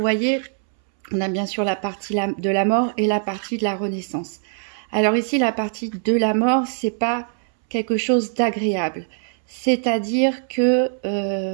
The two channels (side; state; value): left; silent; 63 dB below the other